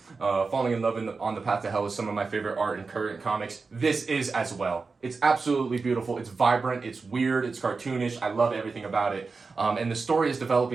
falling in love on the path to hell is some of my favorite art in current comics. This is as well. It's absolutely beautiful. It's vibrant. It's weird. It's cartoonish. I love everything about it. And the story is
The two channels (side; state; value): left; quieter; 4.4 dB